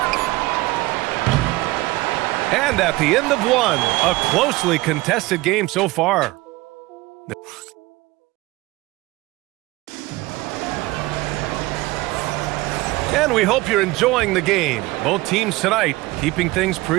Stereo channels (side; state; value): left; quieter; 20.3 dB